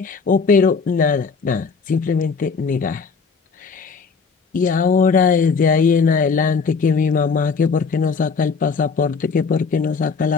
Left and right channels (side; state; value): right; quieter; 5.1 dB